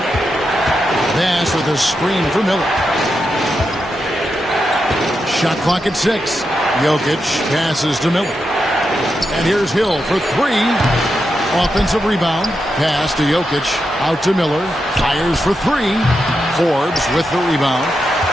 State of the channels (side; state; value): both; normal; correlation 0.86